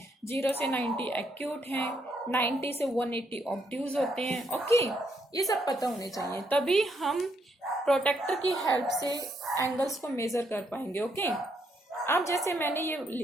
0 से 90 एक्यूट है, 90 से 180 ऑब्ट्यूज होते हैं। ओके, ये सब पता होने चाहिए, तभी हम प्रोटेक्टर की हेल्प से एंगल्स को मेजर कर पाएंगे। ओके, अब जैसे मैंने ये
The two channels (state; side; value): normal; both; correlation 0.75